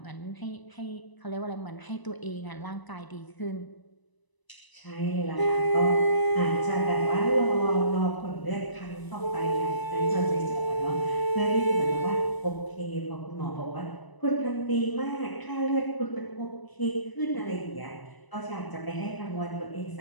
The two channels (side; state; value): right; late; 1.0 ms